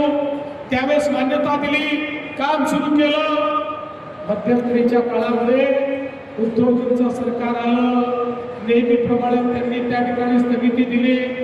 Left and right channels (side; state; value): both; identical; correlation 1.00